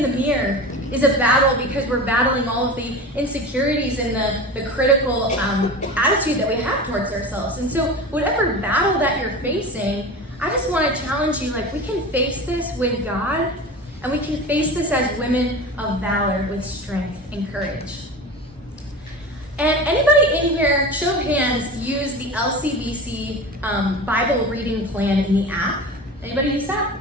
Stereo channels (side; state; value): both; normal; correlation 0.31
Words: the mirror is a battle because we're battling all of the insecurities and the critical attitude that we have towards ourselves. And so whatever battle that you're facing, I just want to challenge you, we can face this with God. And we can face this as women of valor with strength and courage. And anybody in here, show of hands, use the LCBC Bible reading plan in the app? Anybody use